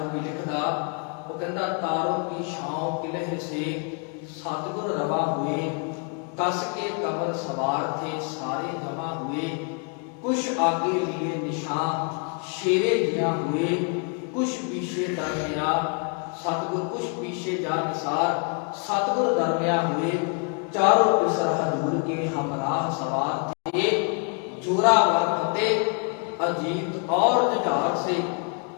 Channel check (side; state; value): right; quieter; 38.4 dB